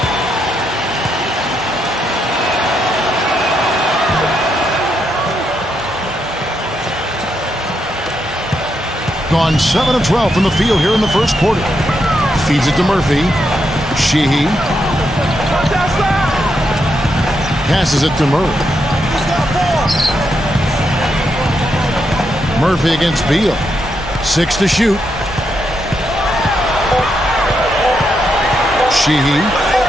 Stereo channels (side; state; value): both; normal; correlation 0.81